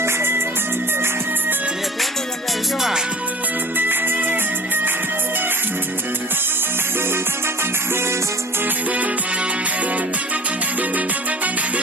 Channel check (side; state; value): both; normal; correlation 0.45